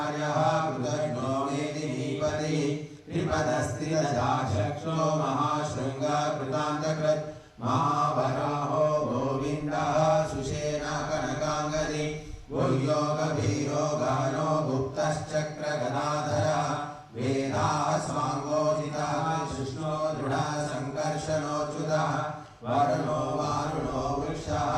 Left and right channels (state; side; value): identical; both; correlation 1.00